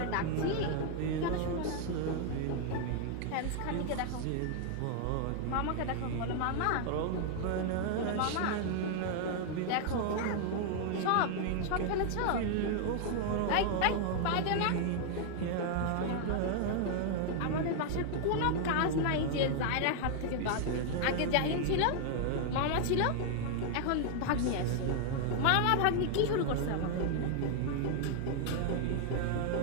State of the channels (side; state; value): both; different; correlation 0.00